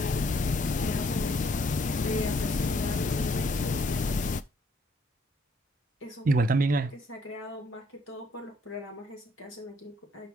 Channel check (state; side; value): normal; both; correlation 0.67